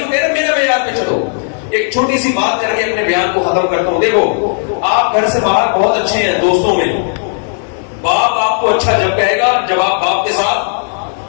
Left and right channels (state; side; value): silent; right; digital silence